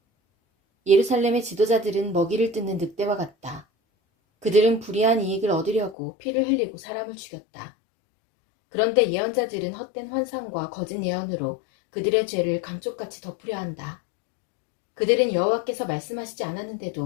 예루살렘의 지도자들은 먹이를 뜯는 늑대와 같다. 그들은 불의한 이익을 얻으려고 피를 흘리고 사람을 죽였다. 그런데 예언자들은 헛된 환상과 거짓 예언으로 그들의 죄를 감쪽같이 덮으려 한다. 그들은 여호와께서 말씀하시지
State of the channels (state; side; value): drops out; right; at 6.0 s